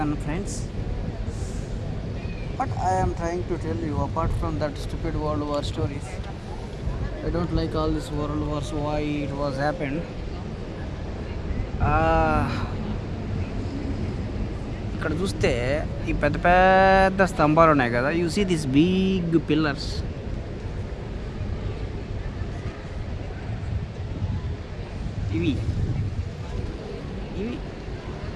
friends, what I am trying to tell you, apart from that stupid World War stories, I don't like all this World Wars, why it was happened. ఇక్కడ చూస్తే ఈ పెద్ద పెద్ద స్తంభాలు ఉన్నాయి కదా, you see this big pillars. ఇవి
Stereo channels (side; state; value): both; identical; correlation 1.00